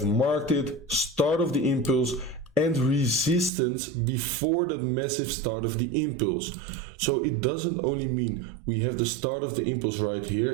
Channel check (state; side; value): drops out; left; at 3.5 s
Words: marked it, start of the impulse and resistance before that massive start of the impulse. So it doesn't only mean we have the start of the impulse right here,